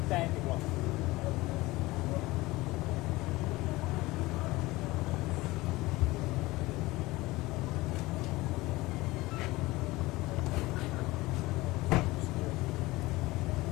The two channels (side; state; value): right; quieter; 20.1 dB